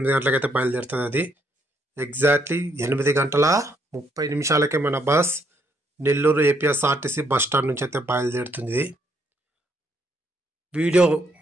గంటలకైతే బయలుదేరుతుంది. అది ఎగ్జాక్ట్లీ 8:30 మన bus Nellore APSRTC bus stand నుంచి అయితే బయలుదేరుతుంది. వీడియో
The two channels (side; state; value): both; normal; correlation 0.72